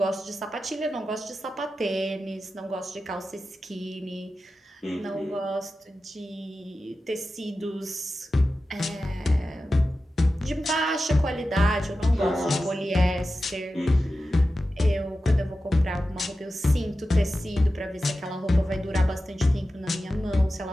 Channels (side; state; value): both; normal; correlation 0.93